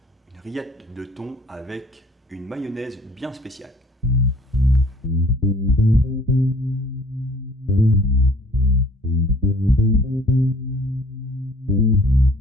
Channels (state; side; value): normal; both; correlation 0.55